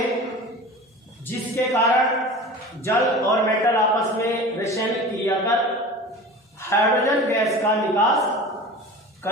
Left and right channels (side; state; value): both; normal; correlation 0.36